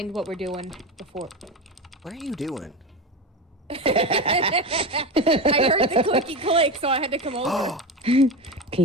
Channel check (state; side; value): normal; both; correlation 0.21